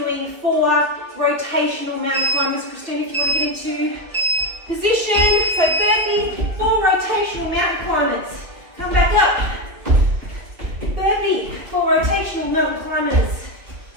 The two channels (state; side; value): late; left; 2.8 ms